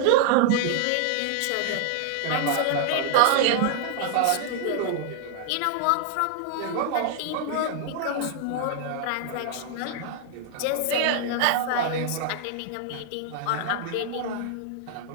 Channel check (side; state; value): both; different; correlation 0.00